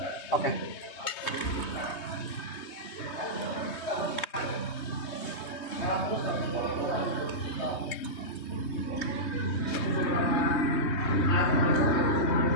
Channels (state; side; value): late; right; 3.2 ms